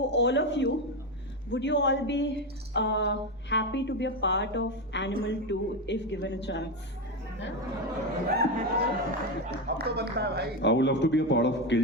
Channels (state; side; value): noise; right; hum, 26 dB below the sound